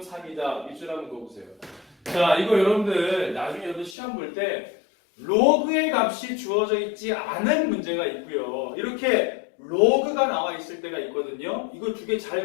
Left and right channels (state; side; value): drops out; right; at 4.0 s